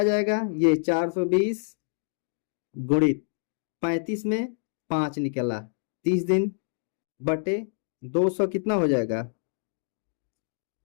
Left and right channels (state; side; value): silent; right; digital silence